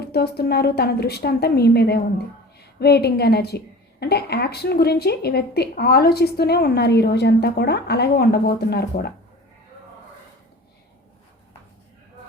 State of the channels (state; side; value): normal; both; correlation 0.39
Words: తన దృష్టి అంతా మీ మీదే ఉంది. వెయిటింగ్ ఎనర్జీ అంటే యాక్షన్ గురించి ఈ వ్యక్తి ఆలోచిస్తూనే ఉన్నారు ఈ రోజంతా కూడా, అలాగే ఉండబోతున్నారు కూడా.